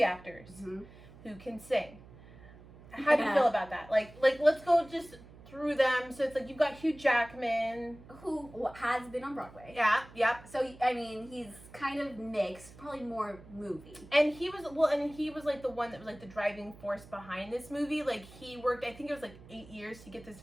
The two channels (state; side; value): noise; right; hum, 20 dB below the sound